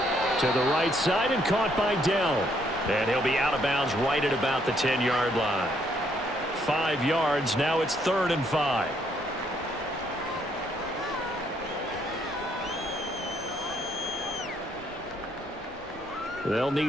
To the right side and caught by Dell. And he'll be out of bounds right at about the 10-yard line. 5 yards. Now it's 3rd and 5. They'll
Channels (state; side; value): normal; both; correlation 0.70